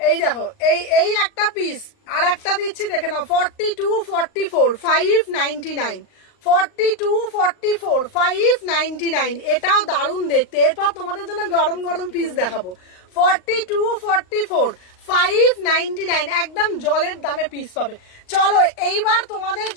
দেখো, এই একটা পিস, আর একটা দিচ্ছি দেখে নাও 42-44 599, 42-44 599, এটাও দারুণ দেখতে। এরপর তোমাদের জন্য গরম গরম পিস দেখাবো। 42-44 599, একদম জলের দামে পিস পাবে। চলো এইবার তোমাদের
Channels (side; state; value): right; late; 38 ms